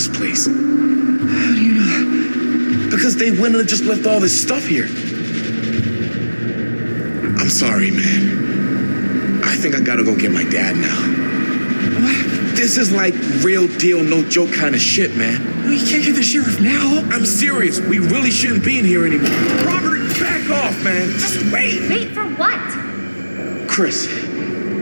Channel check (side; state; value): both; inverted; correlation -1.00